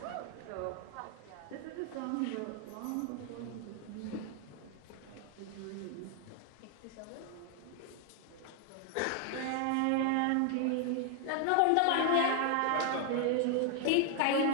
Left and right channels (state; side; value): different; both; correlation 0.00